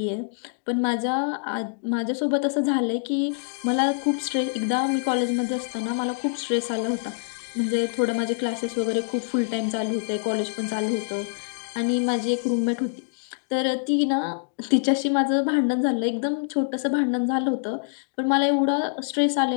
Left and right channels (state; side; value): silent; right; digital silence